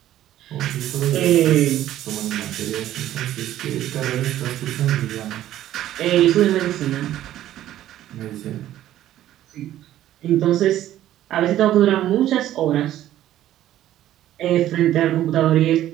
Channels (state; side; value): quieter; left; 13.0 dB